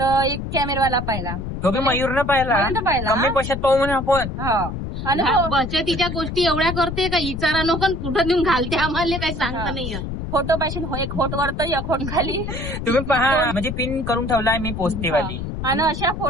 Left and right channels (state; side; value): noise; left; rumble, 6 dB below the sound